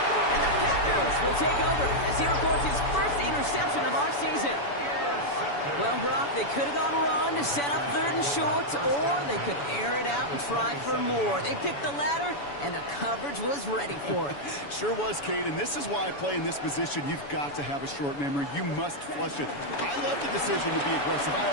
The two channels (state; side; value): late; right; 7.0 ms